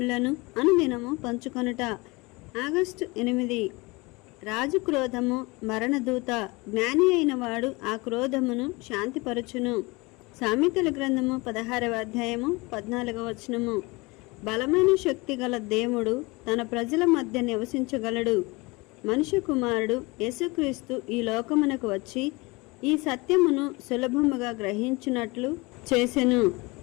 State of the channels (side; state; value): right; quieter; 24.9 dB